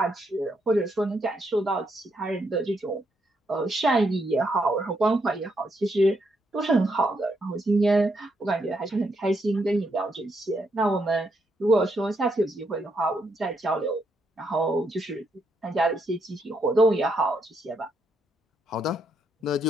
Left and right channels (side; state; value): both; normal; correlation 0.78